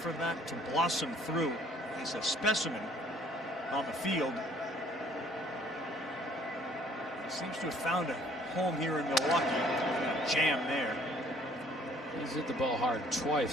that to blossom through. He's a specimen on the field. He seems to have found a home here in Milwaukee. A jam there. He's hit the ball hard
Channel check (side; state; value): both; normal; correlation 0.58